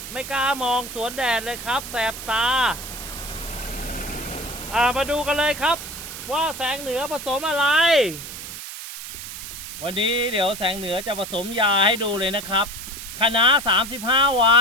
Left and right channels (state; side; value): noise; right; hiss, 10 dB below the sound